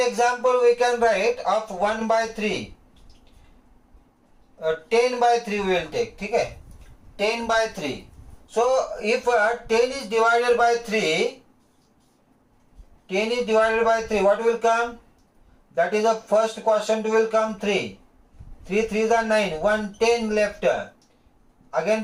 we can write of 1 by 3. 10 by 3 we will take. Okay? 10 by 3. So if 10 is divided by 3, 10 is divided by 3, what will come? That is the first quotient will come 3. 3 3s are 9, 1 10 left.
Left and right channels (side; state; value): both; identical; correlation 1.00